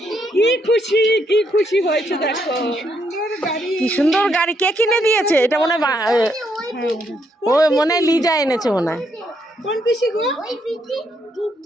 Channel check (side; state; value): both; normal; correlation 0.75